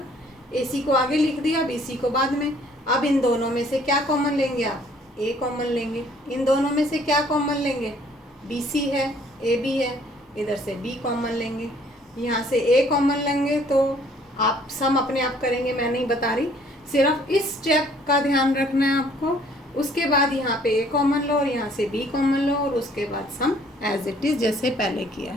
AC को आगे लिख दिया, BC को बाद में। अब इन दोनों में से क्या कॉमन लेंगे आप, A कॉमन लेंगे। इन दोनों में से क्या कॉमन लेंगे, BC है, AB है, इधर से B कॉमन लेंगे, यहाँ से A कॉमन लेंगे, तो आप सम अपने आप करेंगे, मैं नहीं बता रही, सिर्फ इस स्टेप का ध्यान रखना है आपको। उसके बाद यहाँ पे A कॉमन लो और यहाँ से B कॉमन लो और उसके बाद सम एज इट इज़ जैसे पहले किया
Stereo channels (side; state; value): both; normal; correlation 0.59